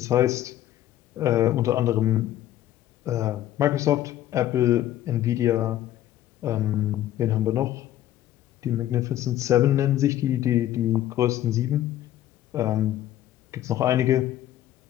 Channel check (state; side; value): quieter; right; 12.9 dB